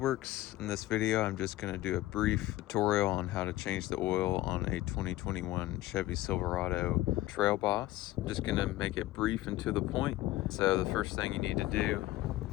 In this video, I'm just going to do a brief tutorial on how to change the oil on a 2021 Chevy Silverado Trail Boss. I'm just going to make it brief and to the point. So the first thing you need to do,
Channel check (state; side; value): quieter; right; 16.3 dB